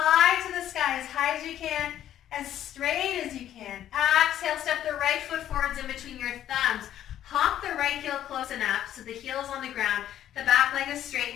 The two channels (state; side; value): quieter; right; 11.4 dB